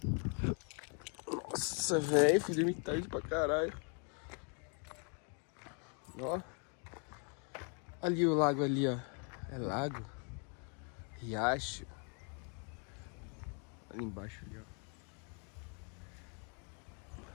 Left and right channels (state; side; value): quieter; right; 38.6 dB